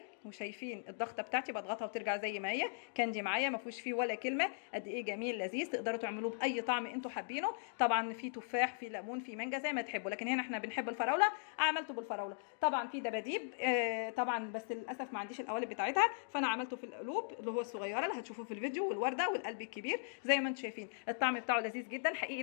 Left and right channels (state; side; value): silent; right; digital silence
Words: وشايفين الضغطه بتاعتي بضغطها وترجع زي ما هي. كاندي معايا ما فيهوش فيه ولا كلمه. قد ايه جميل لذيذ، تقدروا تعملوه باي طعم انتوا حابينه. طبعا في تفاح، في ليمون، في مانجا، زي ما تحبوا، لكن هنا احنا بنحب الفراوله. عملته بالفراوله. طبعا في دباديب طبعا، بس للاسف ما عنديش القوالب بتاعتها، فانا عملته في القلوب اللي هو الصغيره اللي هتشوفوه في الفيديو، والورده والقلب الكبير. زي ما انتم شايفين الطعم بتاعه لذيذ جدا حقيقي.